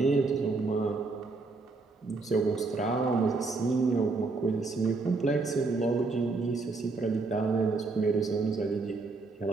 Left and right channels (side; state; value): left; quieter; 3.8 dB